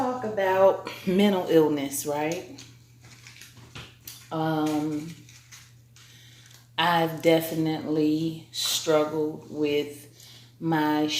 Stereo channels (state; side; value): identical; both; correlation 1.00